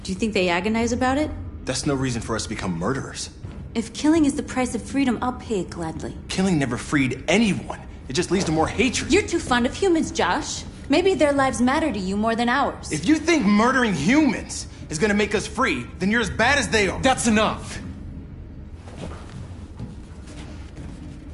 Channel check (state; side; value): identical; both; correlation 1.00